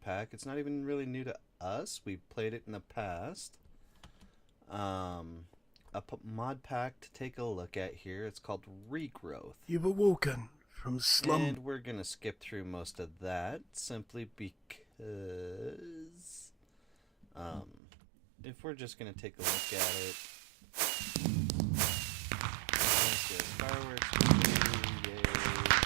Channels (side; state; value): left; drops out; at 17.8 s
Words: pack. It's not even really new to us. We've played it in the past. Mod pack to take a look at here. It's called Regrowth. You were walking from slum. And we're going to skip through most of that simply because if we're just going to take a look at it, fireworks, yay.